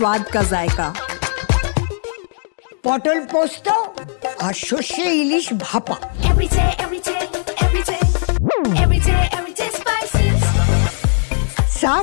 का जायका। পটল পোস্ত আর সর্ষে ইলিশ ভাপা। Every day, every day, every day, every day, every day spices.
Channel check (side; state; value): right; silent; digital silence